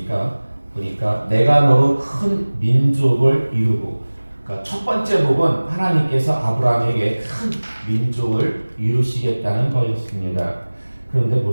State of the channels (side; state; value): both; inverted; correlation -1.00